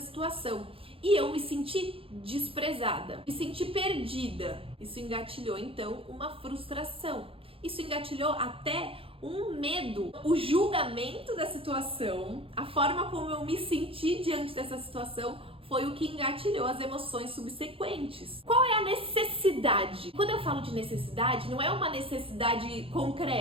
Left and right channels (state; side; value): late; left; 0.27 ms